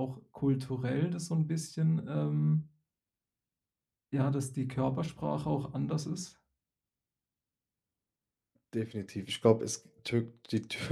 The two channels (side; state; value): both; identical; correlation 1.00